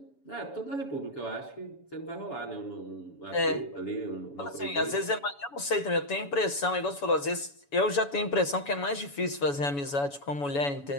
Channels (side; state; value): right; late; 7.1 ms